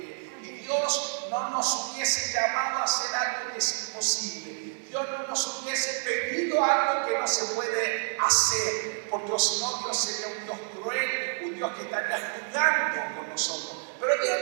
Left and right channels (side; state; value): left; silent; 59 dB below the other